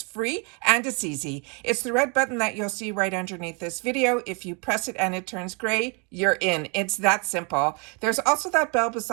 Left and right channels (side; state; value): left; quieter; 33.9 dB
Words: free and it's easy. It's the red button that you'll see right underneath this video. If you press it and it turns gray, you're in. It's that simple. There's also that bell